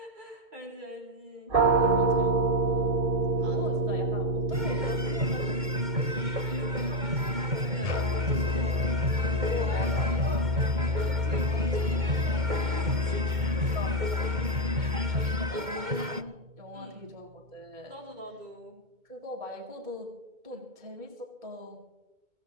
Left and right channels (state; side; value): late; left; 2.2 ms